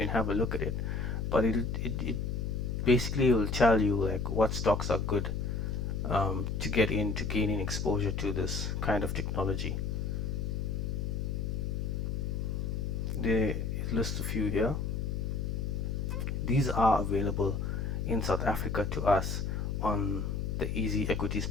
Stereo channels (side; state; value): left; noise; hum, 2 dB below the sound